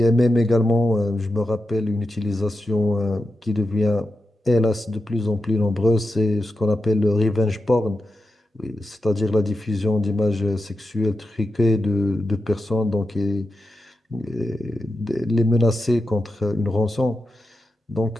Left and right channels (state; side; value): normal; both; correlation 0.89